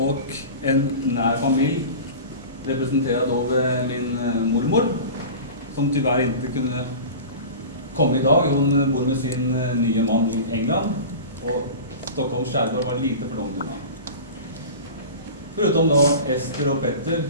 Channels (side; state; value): both; inverted; correlation -0.34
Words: en nær familj representerad av min mormor som tyvärr inte kunde komma idag. Hon bor med sin nya man i England och Stockholms skärgård var lite för långt undan. Förutom då Ester och Petter